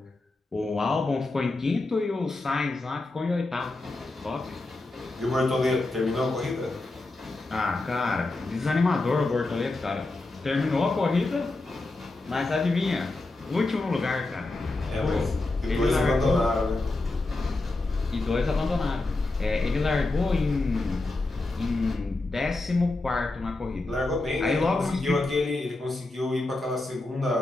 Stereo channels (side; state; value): right; quieter; 3.0 dB